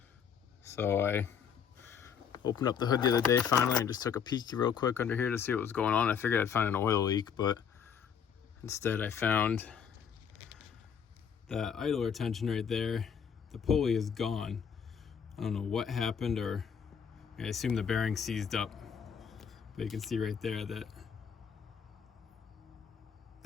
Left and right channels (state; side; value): quieter; right; 7.4 dB